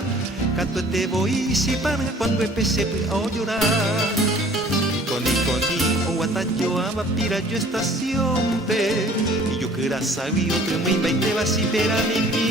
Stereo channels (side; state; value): both; normal; correlation 0.52